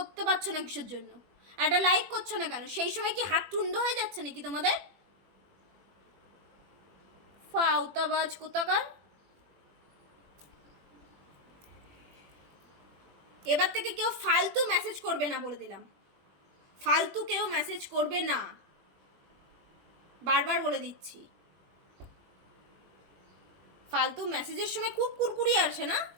পারছো না কিসের জন্য? একটা লাইক করছো না কেন? সেই সময় কি হাত টুন্ড হয়ে যাচ্ছে নাকি তোমাদের? ফাউতাবাজ কোথাকার। এবার থেকে কেউ ফালতু মেসেজ করবে না, বলে দিলাম। ফালতু কেউ মেসেজ করবে না, বারবার বলে দিচ্ছি। ফালতু মেসেজের সময় খুব কুরকুরি আসে না,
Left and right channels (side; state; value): left; late; 21 ms